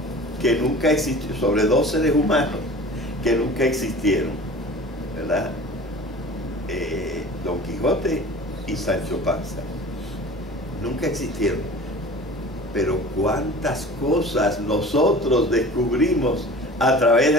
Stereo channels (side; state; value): both; normal; correlation 0.41